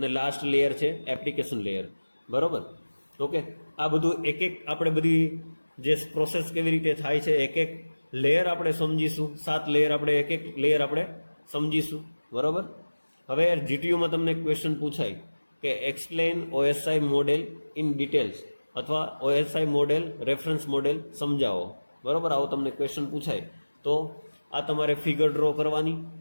લાસ્ટ લેયર છે એપ્લિકેશન લેયર. બરાબર, ઓકે, આ બધું એક આપણે બધી જે પ્રોસેસ કેવી રીતે થાય છે એક લેયર આપણે સમજીશું. 7 લેયર આપણે એક લેયર આપણે સમજીશું. બરાબર, હવે જીટીયુમાં તમને ક્વેશ્ચન પૂછાય કે એક્સપ્લેન ઓએસઆઈ મોડેલ ઇન ડિટેલ્સ અથવા ઓએસઆઈ મોડેલ રેફરન્સ મોડેલ સમજાવો. બરાબર, આવો તમને ક્વેશ્ચન પૂછાય તો આ તમારે ફિગર ડ્રો કરવાની.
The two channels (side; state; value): both; inverted; correlation -1.00